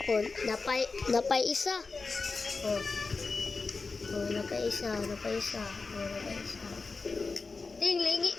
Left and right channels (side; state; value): right; quieter; 4.2 dB